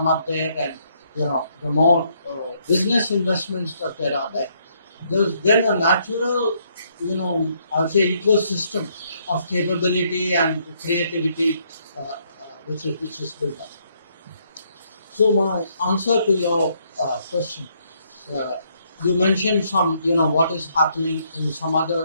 up there, and the more business investments that there are there, there's then a natural, I'll say ecosystem of capability and creativity which is built up. So my answer to your question, uh, you mentioned some, what is happening in some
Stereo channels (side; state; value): both; inverted; correlation -0.72